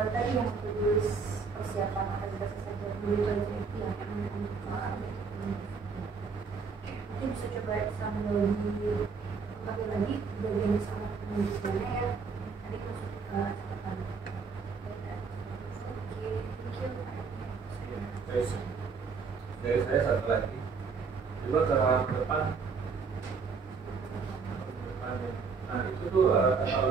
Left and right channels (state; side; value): quieter; left; 5.2 dB